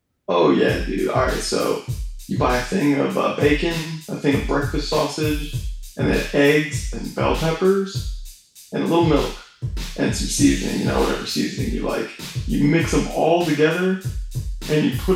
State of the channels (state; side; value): identical; both; correlation 1.00